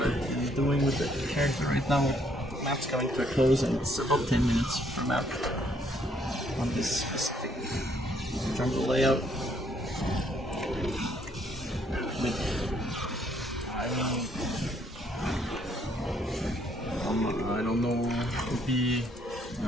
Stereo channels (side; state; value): both; normal; correlation 0.68